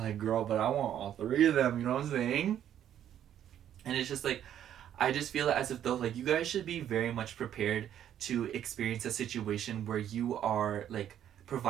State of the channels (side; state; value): left; quieter; 10.4 dB